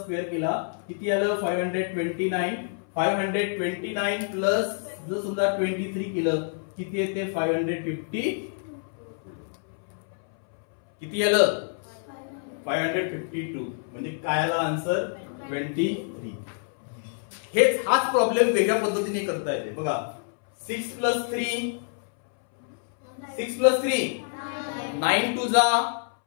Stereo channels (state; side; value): silent; right; 60 dB below the other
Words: केला किती आलं 529, 529 प्लस जर समजा 23 केलं किती येते 550 किती आलं 552 म्हणजे काय आला आन्सर 23. हाच प्रॉब्लेम वेगळ्या पद्धतीने करता येते बघा. 6 प्लस 3 9 टू जा